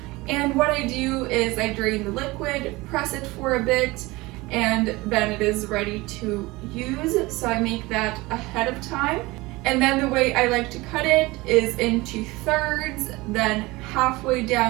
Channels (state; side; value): quieter; left; 21.6 dB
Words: And what I do is I drain the liquid, press it for a bit, and then it is ready to use. So I make that ahead of time. And then the way I like to cut it is into thirds, then halfway